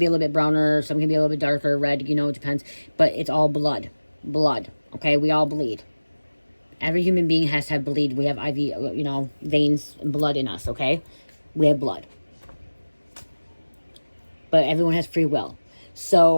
a little bit browner, some can be a little bit darker, red, it depends. But it's all blood. Blood, okay? We all bleed. Every human being has to have bleed. We have IV, veins and blood in us, okay? We have blood. But everyone has free will.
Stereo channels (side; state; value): both; inverted; correlation -1.00